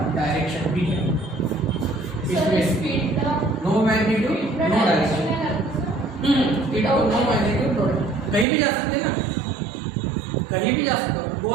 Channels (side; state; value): left; drops out; at 8.5 s